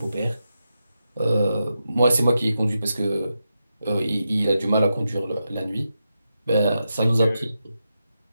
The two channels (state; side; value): inverted; both; correlation -0.87